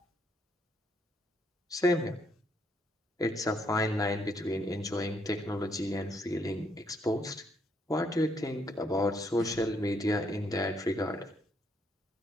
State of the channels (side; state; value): both; normal; correlation 0.73